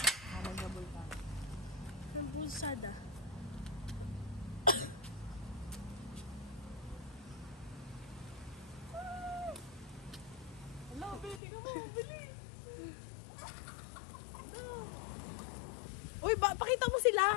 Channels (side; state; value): right; drops out; at 11.4 s